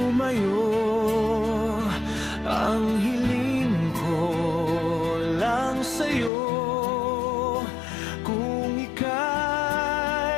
Ang hiling ko lang sa'yo, kung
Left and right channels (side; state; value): right; drops out; at 6.3 s